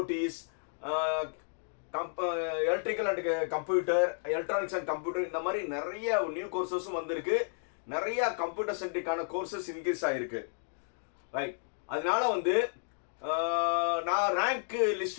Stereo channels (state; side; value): silent; right; digital silence